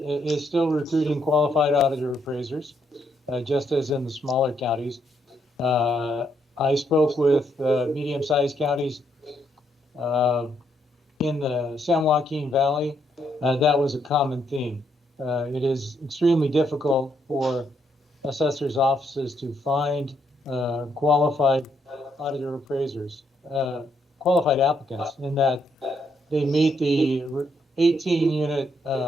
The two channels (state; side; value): normal; both; correlation 0.75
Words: still recruiting qualified auditor appraisers, just as in the smaller counties. I spoke with medium-sized counties in the San Joaquin Valley. That was a common theme. It is extremely difficult for assessors' offices to find qualified auditor appraisers, qualified applicants, in that they meet the 18-unit